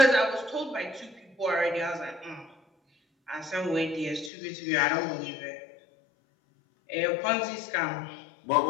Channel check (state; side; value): drops out; right; at 4.3 s